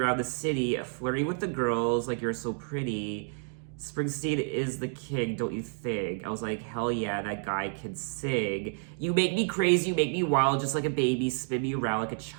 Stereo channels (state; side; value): silent; left; 58 dB below the other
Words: the city, flirting with the girls like you're so pretty. Springsteen is the king, don't you think? I was like, hell yeah, that guy can sing. You make me crazy, you make me wild, just like a baby, spin me around like a